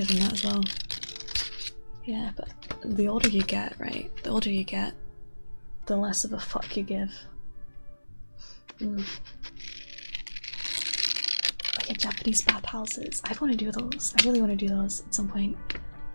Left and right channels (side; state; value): both; inverted; correlation -1.00